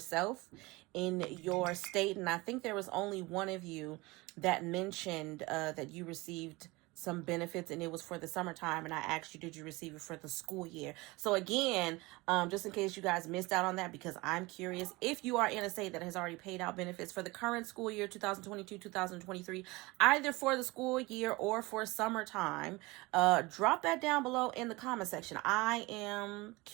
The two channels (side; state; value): left; quieter; 22.8 dB